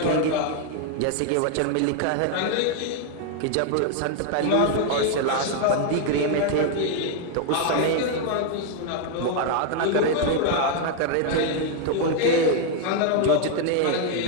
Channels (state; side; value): different; both; correlation 0.00